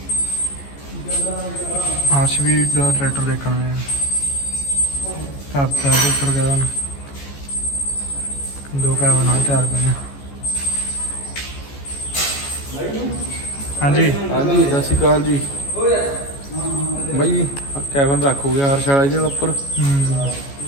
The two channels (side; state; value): right; late; 14 ms